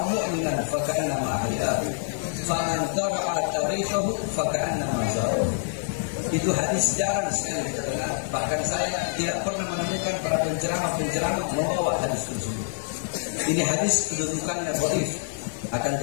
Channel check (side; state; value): right; silent; 61 dB below the other